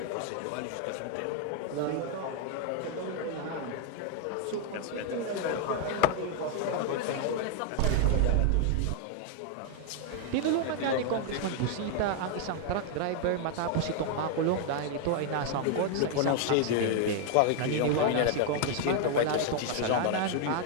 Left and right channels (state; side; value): different; both; correlation 0.00